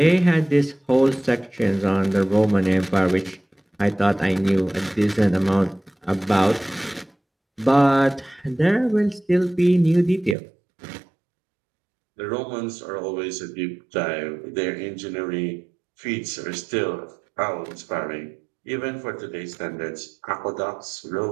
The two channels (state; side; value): drops out; left; at 10.4 s